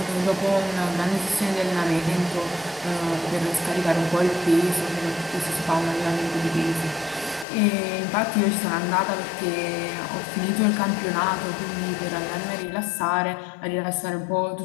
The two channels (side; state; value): right; drops out; at 7.5 s